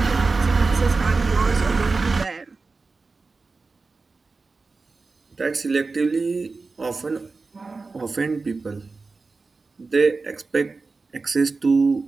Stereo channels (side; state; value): left; quieter; 4.0 dB